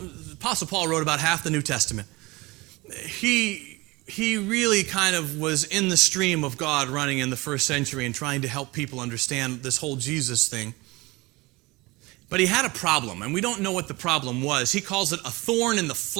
Paul wrote about half the New Testament. He he really kind of was in the stream of God running in the first century and trying to help people understand this whole Jesus thing. But he had a problem, and we don't know what the problem was. He calls it a thorn in the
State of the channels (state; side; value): quieter; left; 22.9 dB